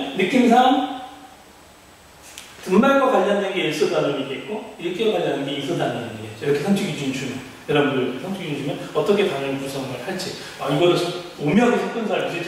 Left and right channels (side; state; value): both; identical; correlation 1.00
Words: 느낌상 등말과 관련된 게 1소 단원이겠고 읽기와 관련된 게 2소 단원이겠죠. 이렇게 성취 기준이 주면 여러분들 성취기준 주면 어떻게 단어를 구성을 할지. 이거를 오묘하게 섞은 사람